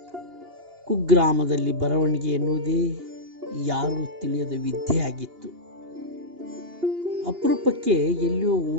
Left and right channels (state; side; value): late; left; 2.8 ms